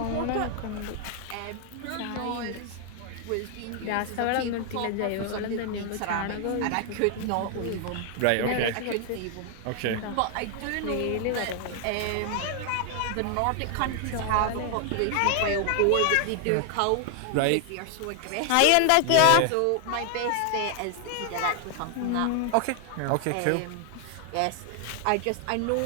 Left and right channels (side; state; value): both; different; correlation 0.00